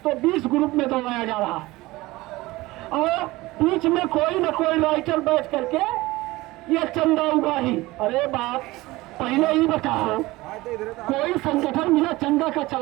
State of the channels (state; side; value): quieter; left; 19.8 dB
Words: तो 20 ग्रुप में दौड़ाया जा रहा है और बीच में कोई न कोई राइटर बैठ करके ये चंदा उगाही। अरे बाप, पहले ही बताओ, कोई संगठन बिना चंदा का